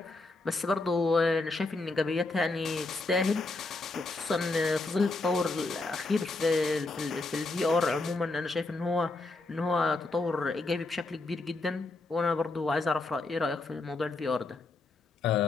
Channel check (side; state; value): right; quieter; 3.3 dB